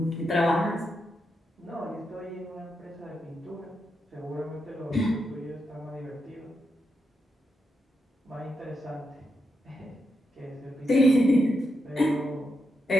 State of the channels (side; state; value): both; normal; correlation 0.84